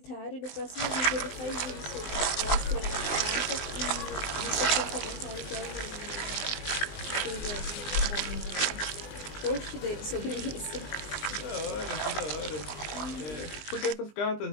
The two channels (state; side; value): late; right; 20 ms